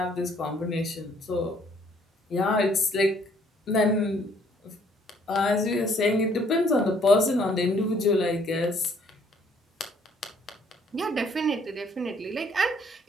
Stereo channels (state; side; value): normal; both; correlation 0.63